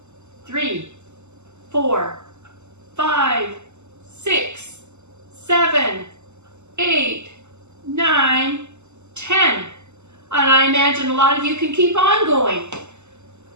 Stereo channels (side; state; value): left; late; 0.83 ms